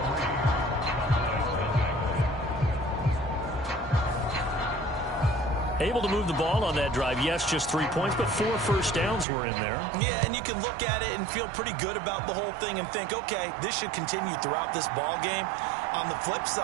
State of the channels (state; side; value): drops out; left; at 9.2 s